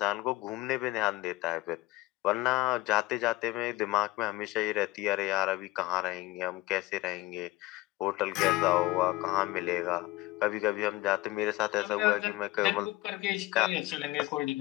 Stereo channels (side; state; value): right; quieter; 19.1 dB